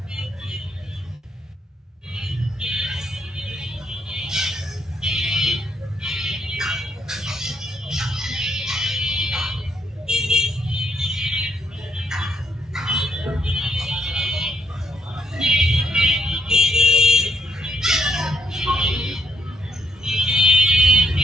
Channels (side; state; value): both; normal; correlation 0.75